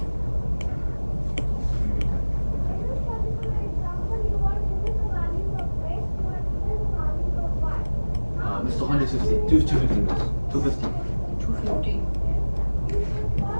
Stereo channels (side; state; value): both; inverted; correlation -1.00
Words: Mr. 150. 250, miss. 250. 250.